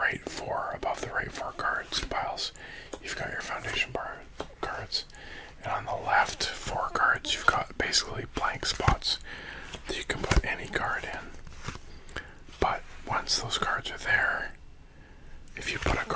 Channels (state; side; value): identical; both; correlation 1.00